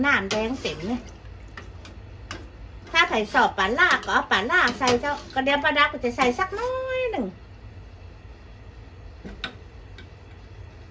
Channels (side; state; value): both; identical; correlation 1.00